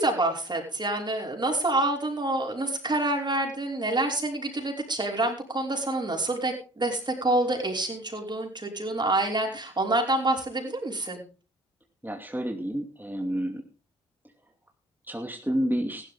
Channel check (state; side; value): normal; both; correlation 0.48